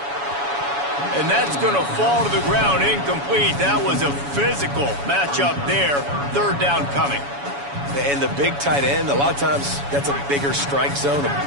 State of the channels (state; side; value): late; left; 7.1 ms